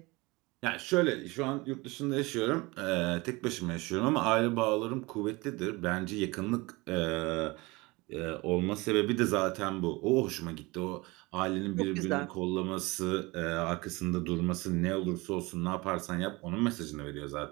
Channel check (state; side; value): quieter; left; 23.7 dB